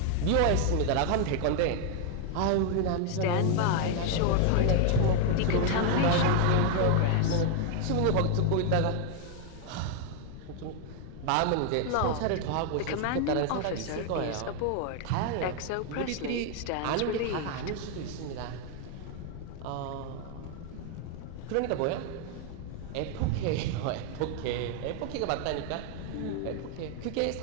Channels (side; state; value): both; different; correlation 0.00